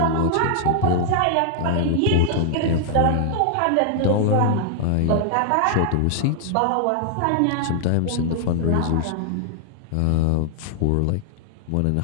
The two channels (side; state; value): both; different; correlation 0.00